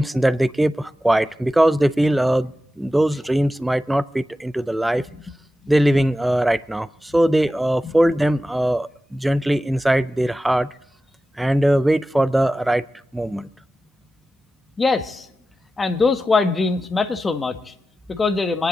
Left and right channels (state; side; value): normal; both; correlation 0.93